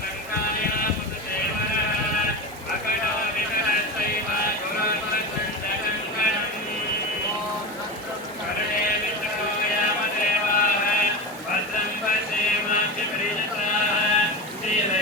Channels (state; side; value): normal; both; correlation 0.23